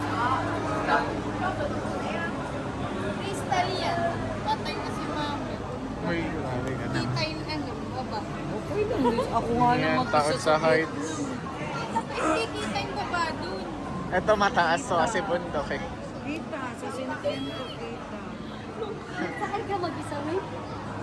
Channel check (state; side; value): identical; both; correlation 1.00